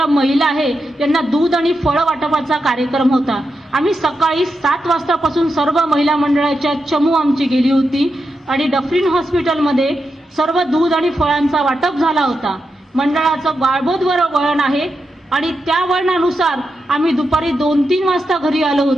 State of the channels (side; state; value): both; normal; correlation 0.87